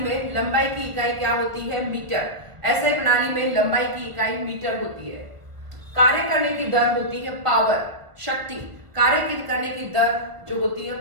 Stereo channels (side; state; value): left; late; 1.5 ms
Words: लंबाई की इकाई क्या होती है? मीटर। एसआई प्रणाली में लंबाई की इकाई मीटर होती है। कार्य करने की दर होती है पावर, शक्ति। कार्य करने की दर जो होती है